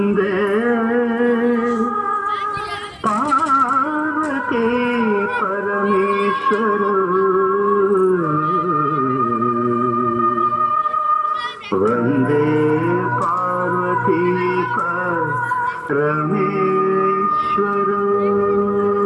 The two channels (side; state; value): both; identical; correlation 1.00